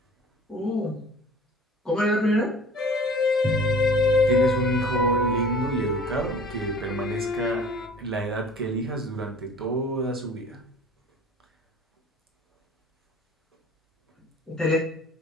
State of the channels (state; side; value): normal; both; correlation 0.46